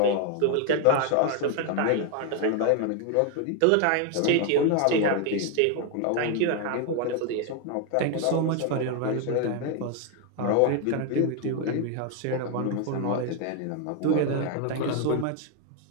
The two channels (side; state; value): both; different; correlation 0.01